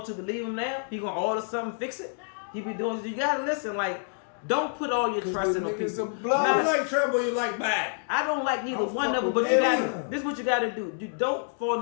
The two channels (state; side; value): silent; right; digital silence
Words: to believe him now? He gonna order something, fix it? He be doing. You gotta listen. Like, don't put all your 'Cause trust the in the niggas people. are blood. Nah, You like Trump or you like Biden? I don't like neither I'm one of them, fucking but you with gotta. them. This is what you gotta do. You don't